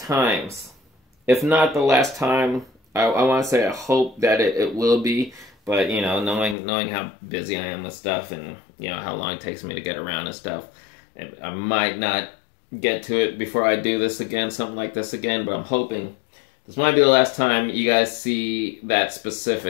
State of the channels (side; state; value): right; drops out; at 6.6 s